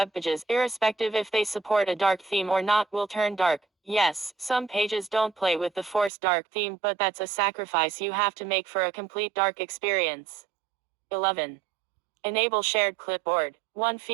pages, irrespective if they support a dark theme or not, will turn dark. Yes, some pages don't play with the forced dark theme, but that's a sacrifice you have to make for a complete dark experience. 11. Enable shared clipboard. One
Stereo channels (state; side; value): drops out; left; at 6.1 s